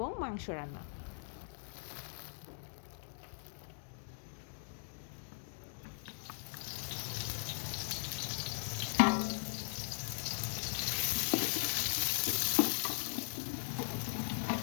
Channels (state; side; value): silent; right; digital silence